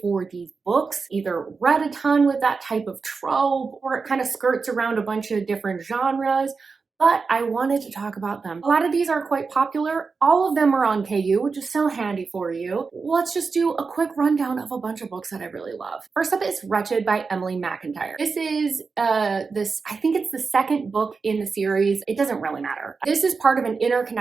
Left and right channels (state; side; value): quieter; left; 4.7 dB